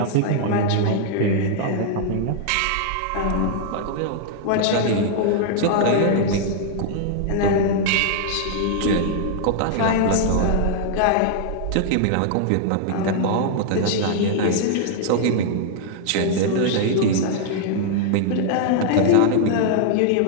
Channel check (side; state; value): both; different; correlation -0.01